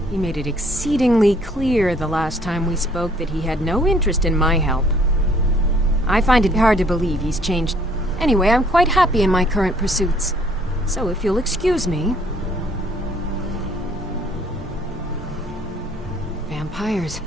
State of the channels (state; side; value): normal; both; correlation 0.61